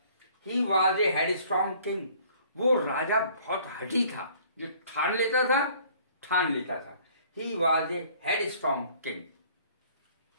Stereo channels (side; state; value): both; inverted; correlation -0.56